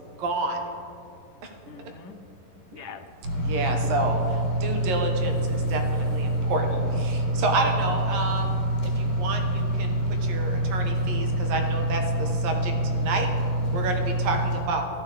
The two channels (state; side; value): late; left; 11 ms